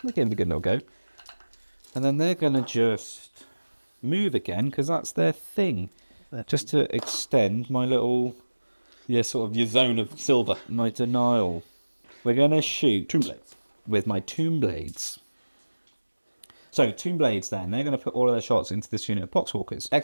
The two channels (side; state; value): both; inverted; correlation -1.00